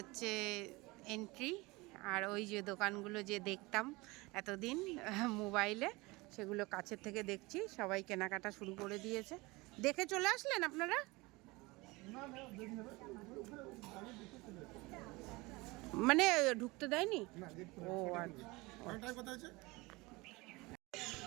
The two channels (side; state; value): left; quieter; 23.2 dB